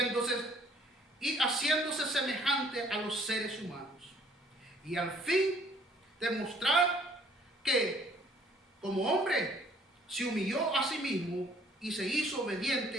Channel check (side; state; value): both; normal; correlation 0.59